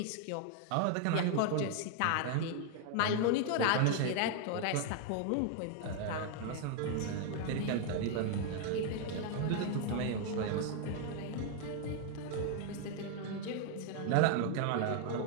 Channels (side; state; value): both; different; correlation 0.00